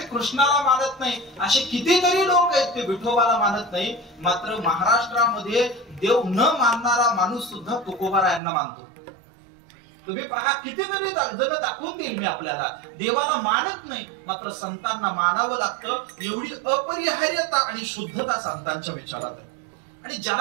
कृष्णाला मानत नाही, असे कितीतरी लोक आहेत ते विठोबाला मानत नाही. मात्र महाराष्ट्रामध्ये देव न मानणारा माणूस सुद्धा तुकोबारायांना मानतो. तुम्ही पहा कितीतरी जण दाखवून देईल मी आपल्याला. देवाला मानत नाही, मात्र संतांना मानावं लागतं. एवढी अपरिहार्यता आणि शुद्धता संतांच्या विचारात आहे. आणि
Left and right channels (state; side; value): drops out; left; at 8.4 s